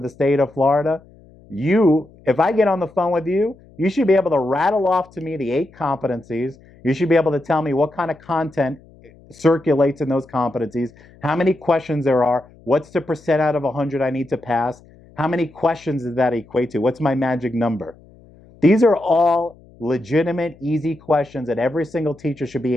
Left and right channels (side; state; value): left; noise; hum, 26 dB below the sound